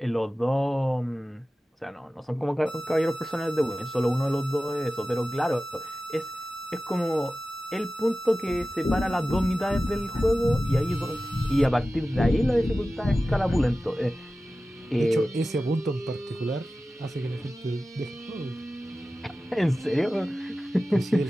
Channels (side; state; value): both; normal; correlation 0.95